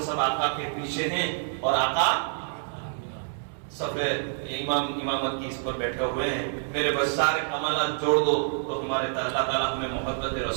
سب آقا کے پیچھے ہیں, اور آقا سب امامت کی اس پر بیٹھے ہوئے ہیں. میرے بس سارے کمالات جوڑ دو تو ہمارے اللہ تعالیٰ ہمیں محبت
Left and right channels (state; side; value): silent; left; digital silence